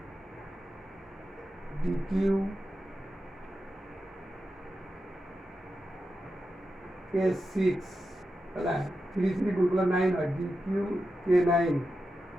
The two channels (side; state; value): both; normal; correlation 0.90